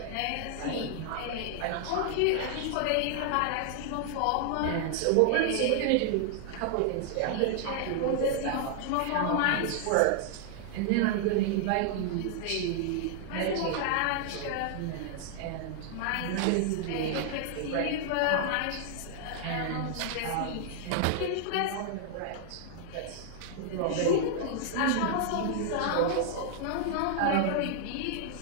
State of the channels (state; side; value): different; both; correlation -0.01